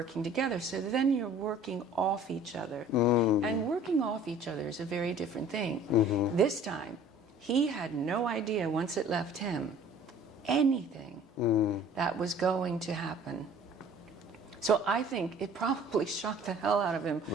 together. So then you're working off each other. And working off each other is a very different thing. This time, he had no idea once it left him anything that was going to happen. So I think it probably shocked the hell out of him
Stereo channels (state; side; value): normal; both; correlation 0.50